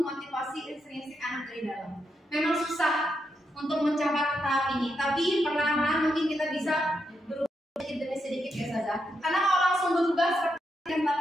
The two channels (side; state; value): both; normal; correlation 0.83